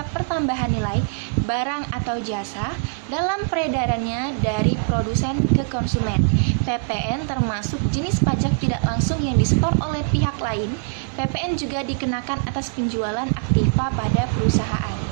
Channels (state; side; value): silent; left; digital silence